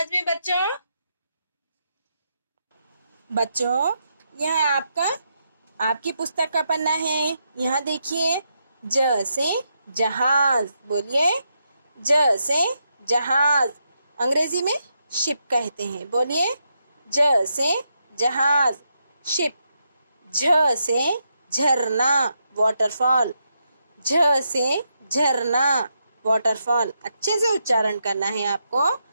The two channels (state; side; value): inverted; both; correlation -0.82